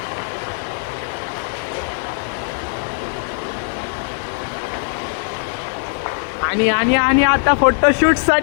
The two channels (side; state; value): right; silent; digital silence